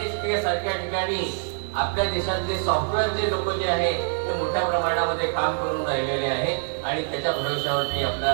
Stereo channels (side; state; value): left; silent; 62 dB below the other